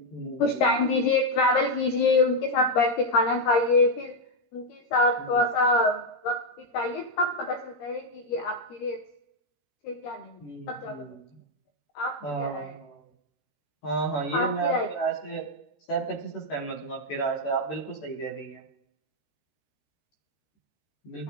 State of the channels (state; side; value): late; right; 13 ms